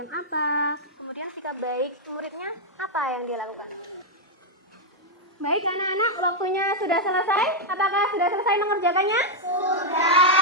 apa? Kemudian sikap baik muridnya apa yang dia lakukan? Baik anak-anak, waktunya sudah selesai. Apakah sudah selesai mengerjakannya?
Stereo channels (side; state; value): both; normal; correlation -0.02